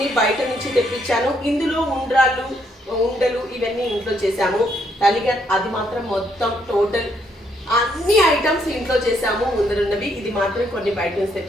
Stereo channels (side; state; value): both; normal; correlation 0.73